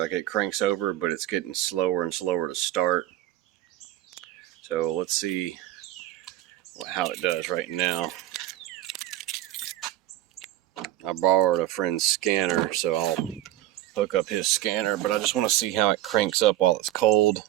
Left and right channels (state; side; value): quieter; left; 14.3 dB